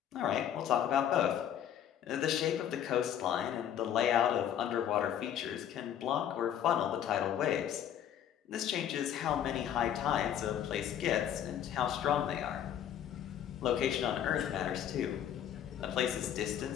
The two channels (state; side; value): quieter; right; 9.9 dB